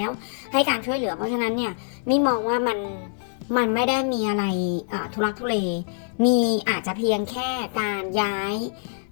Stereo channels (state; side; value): silent; right; digital silence